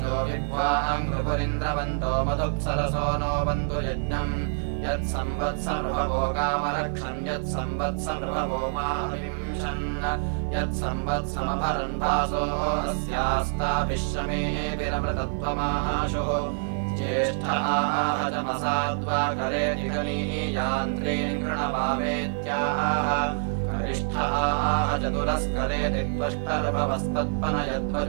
विद्वां नृपुरिन्द्रवन्तो मधुप्सरसो नो बन्धु यज्ञम् यत्संवत्सनृभवो कामरक्षन् यत्संवत्सनृभवो माविंशन् यत्संवत्समभरन् भासो अस्यास्ताभिश्रमेभिरमृतत्वमाशुः ज्येष्ठाः करेति गणीयान्त्रीन् कृणवावेत्याह कनिष्ठाः चतुरस्करेति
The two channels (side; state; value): left; silent; 59 dB below the other